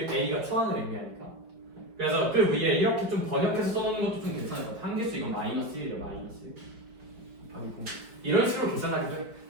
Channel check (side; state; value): left; late; 4.6 ms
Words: a가 초항을 의미하니까 그래서 그 위에 이렇게 좀 번역해서 써놓는 것도 좀 괜찮을 것 같아요. 함계수 이거 마이너스 1이죠. 마이너스 1 곱하기 공 이런 식으로 계산하기도 해요.